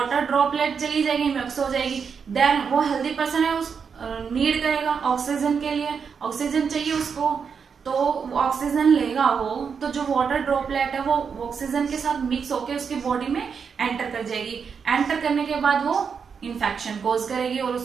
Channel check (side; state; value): left; quieter; 6.3 dB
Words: ड्रॉपलेट चली जाएगी, मिक्स हो जाएगी। देन वो हेल्दी पर्सन है उस नीड करेगा ऑक्सीजन के लिए, ऑक्सीजन चाहिए उसको, तो ऑक्सीजन लेगा वो, तो जो वाटर ड्रॉपलेट है वो ऑक्सीजन के साथ मिक्स होकर उसकी बॉडी में एंटर कर जाएगी। एंटर करने के बाद वो इन्फेक्शन कॉज करेगी और